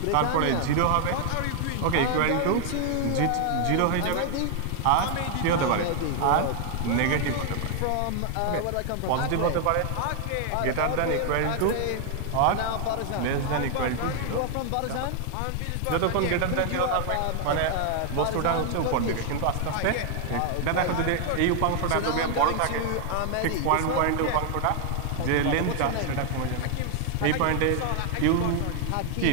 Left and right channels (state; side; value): different; both; correlation 0.00